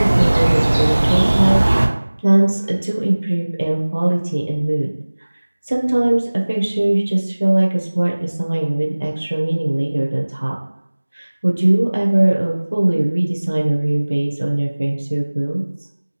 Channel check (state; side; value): inverted; both; correlation -1.00